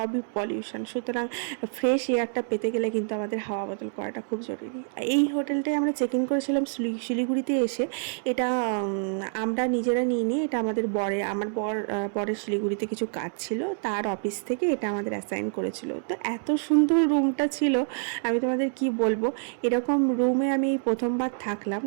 পলিউশন। সুতরাং ফ্রেশ এয়ারটা পেতে গেলে কিন্তু আমাদের হাওয়া বদল করাটা খুব জরুরি। এই হোটেলটায় আমরা চেক ইন করেছিলাম শিলিগুড়িতে এসে। এটা আমরা নিজেরা নিইনি, এটা আমাদের আমার বরের শিলিগুড়িতে কিছু কাজ ছিল, তার অফিস থেকে এটা আমাদের অ্যাসাইন করেছিল। তো এত সুন্দর রুমটা ছিল, আমি তোমাদের কি বলবো, এরকম রুমে আমি প্রথমবার থাকলাম।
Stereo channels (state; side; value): silent; left; digital silence